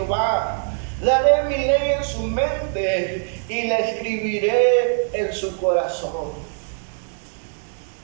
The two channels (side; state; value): left; silent; 64 dB below the other